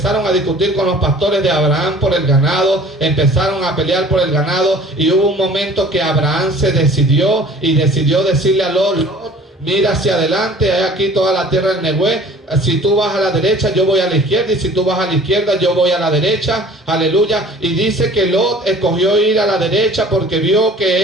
a discutir con los pastores de Abraham por el ganado, empezaron a pelear por el ganado, y hubo un momento que Abraham se decidió decirle a Lot, mira hacia adelante, hay aquí toda la tierra del Negué. Si tú vas a la derecha, yo voy a la izquierda, y si tú vas a la izquierda, yo voy a la derecha. Aleluya. Y dice que Lot escogió ir a la derecha porque vio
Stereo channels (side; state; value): both; normal; correlation 0.48